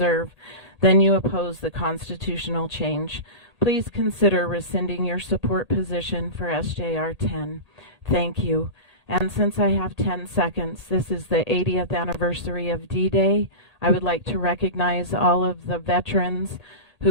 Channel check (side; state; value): left; late; 1.8 ms